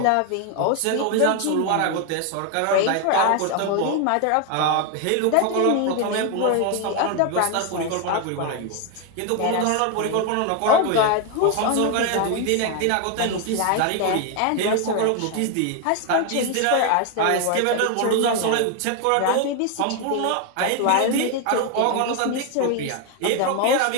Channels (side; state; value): both; different; correlation 0.01